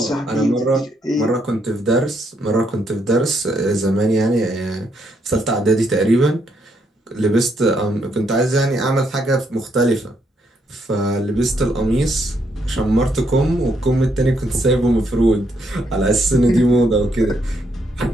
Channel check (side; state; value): both; normal; correlation 0.74